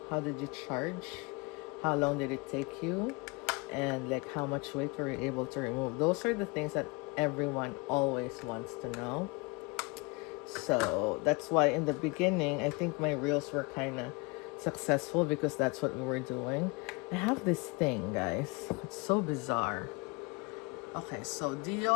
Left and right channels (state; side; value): quieter; right; 28.4 dB